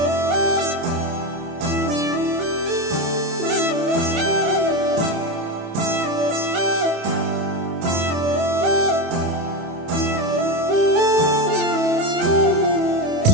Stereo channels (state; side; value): late; left; 27 ms